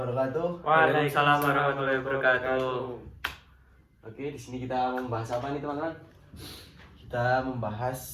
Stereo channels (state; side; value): identical; both; correlation 1.00